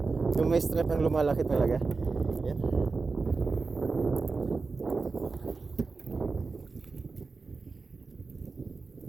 Yung may strap ang lumalaki talaga. Yan.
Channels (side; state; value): left; quieter; 4.2 dB